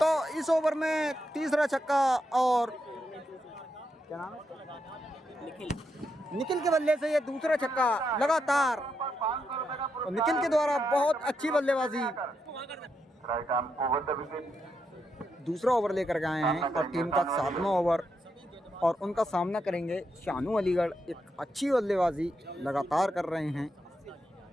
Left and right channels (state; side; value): normal; both; correlation 0.82